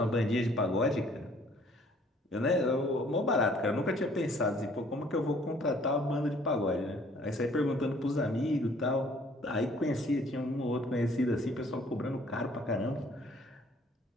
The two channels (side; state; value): both; normal; correlation 0.58